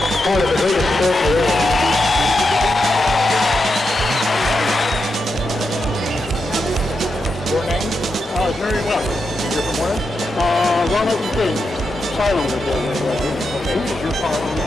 part of the biggest sport there is. Your name? Very well. You're from where? Ronald King, Silander building. Okay, is your car on the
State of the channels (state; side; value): normal; both; correlation 0.86